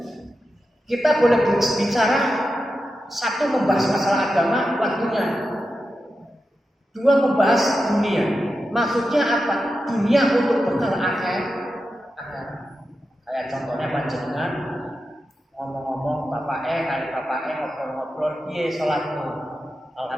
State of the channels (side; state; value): both; normal; correlation 0.90